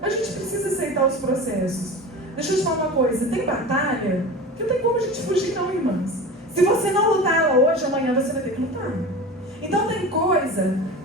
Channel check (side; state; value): both; normal; correlation 0.33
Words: gente precisa aceitar os processos. Deixa eu te falar uma coisa, tem batalha que não tem como a gente fugir não, irmãs. Se você não lutar ela hoje, amanhã você vai ter que lutar. Então tem coisa